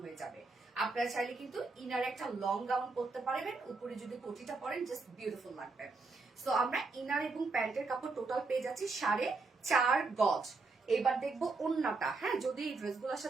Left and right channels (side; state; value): left; quieter; 3.8 dB